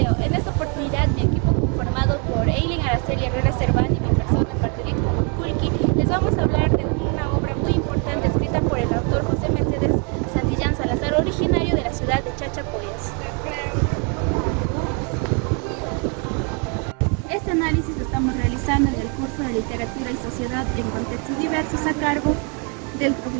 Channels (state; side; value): quieter; left; 36.9 dB